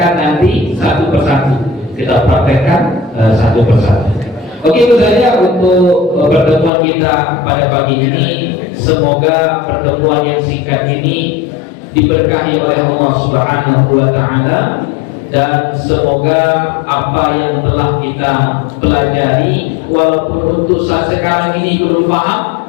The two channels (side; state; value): right; drops out; at 6.7 s